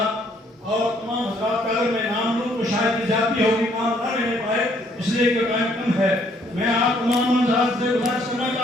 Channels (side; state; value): both; normal; correlation 0.66